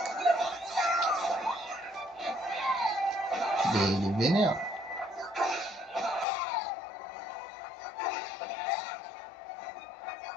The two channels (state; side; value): drops out; right; at 6.2 s